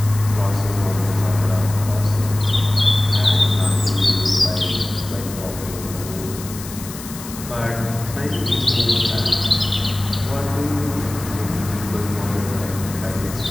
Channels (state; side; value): noise; left; hiss, 13 dB below the sound